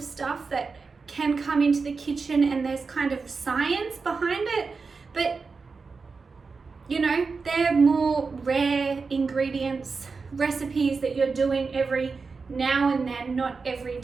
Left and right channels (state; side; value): quieter; left; 4.6 dB